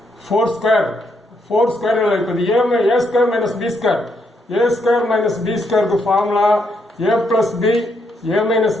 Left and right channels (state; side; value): normal; both; correlation 0.76